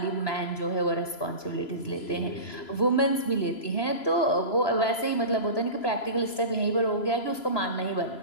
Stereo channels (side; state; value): right; late; 3.0 ms